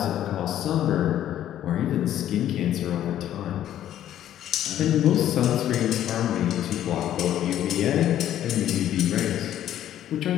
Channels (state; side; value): quieter; right; 11.6 dB